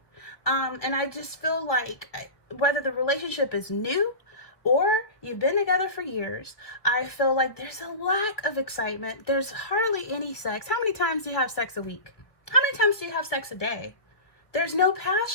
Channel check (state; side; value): late; right; 1.3 ms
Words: and I just feel like whether the relationship is new or you've been together for years, I feel like there's a lack of excitement. There's hardly any sex. How many times do you have sex a week? How many times do you have sex a day? There's no